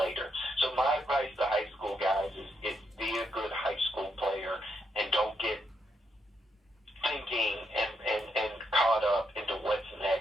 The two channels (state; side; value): normal; both; correlation 0.79